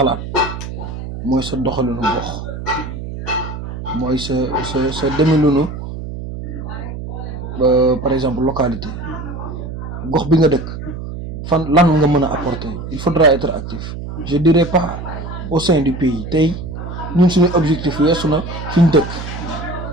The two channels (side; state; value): right; noise; hum, 8 dB below the sound